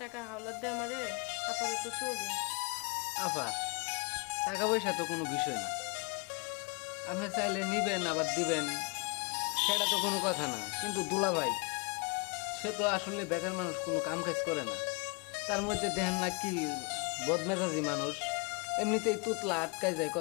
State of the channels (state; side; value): quieter; right; 32.7 dB